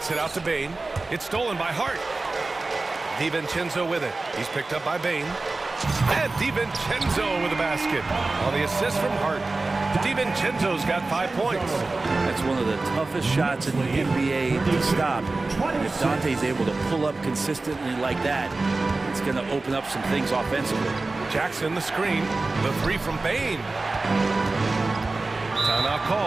it out to Bain. It's stolen by Hart. DiVincenzo with it. He's picked up by Bain. And DiVincenzo with a basket. On the assist from Hart. DiVincenzo's got 5 points. That's one of the toughest shots in the NBA to stop. If Dante's able to pull up consistently like that, it's going to open up some things offensively. Jackson, the screen. The 3 from Bain. Timeout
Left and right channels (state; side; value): quieter; left; 3.4 dB